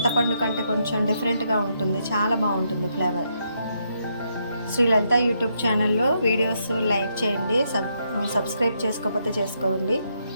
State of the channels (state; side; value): inverted; both; correlation -0.78